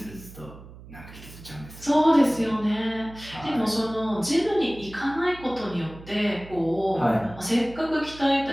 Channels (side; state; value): right; noise; hum, 17 dB below the sound